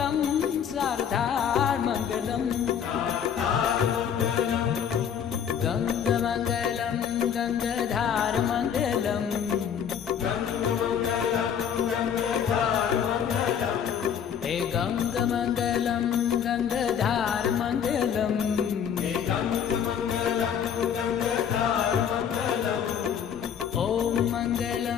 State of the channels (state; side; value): quieter; right; 8.2 dB